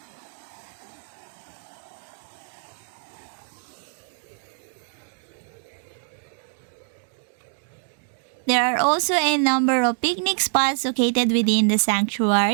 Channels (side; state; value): left; silent; digital silence